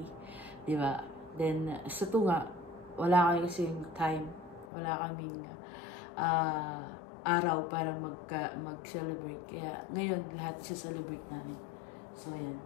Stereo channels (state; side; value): drops out; right; at 4.7 s